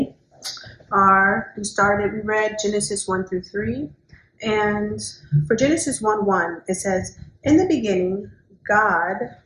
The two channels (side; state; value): both; identical; correlation 1.00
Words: are we read Genesis 1 through 3, and for Genesis 1:1, it says, "In the beginning,